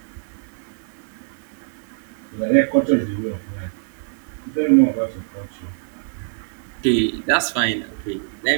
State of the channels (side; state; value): left; silent; 62 dB below the other